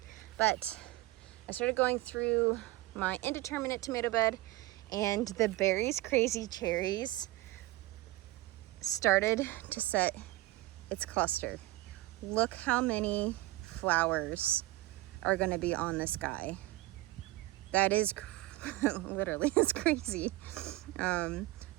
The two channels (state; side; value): quieter; left; 18.4 dB